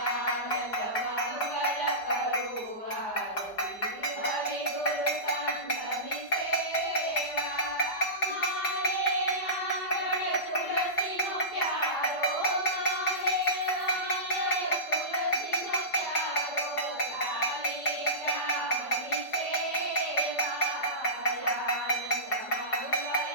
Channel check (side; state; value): right; late; 5.0 ms